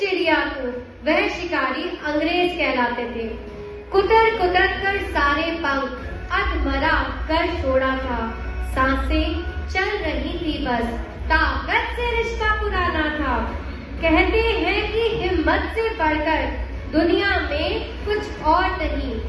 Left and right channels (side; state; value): both; identical; correlation 1.00